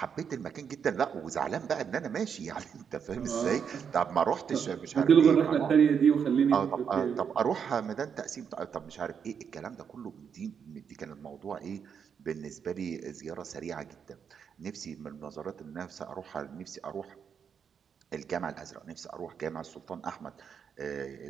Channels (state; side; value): quieter; left; 7.2 dB